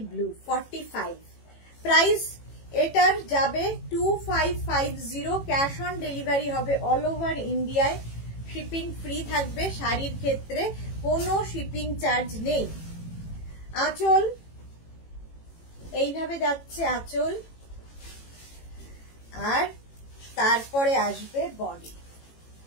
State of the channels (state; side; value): late; right; 18 ms